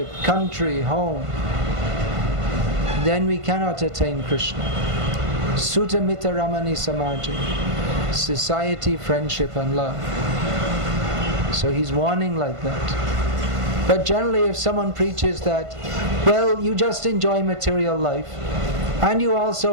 country, home, then we cannot attain Krishna. Sutta Mita Ramani Samaji, society, friendship and love. So he's warning like that. But generally, if someone preaches that, well, you just enjoy material life, And you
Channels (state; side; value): late; left; 1.5 ms